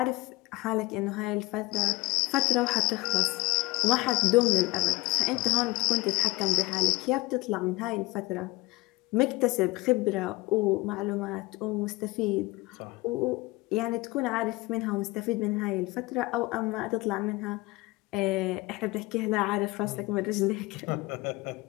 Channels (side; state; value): right; quieter; 22.1 dB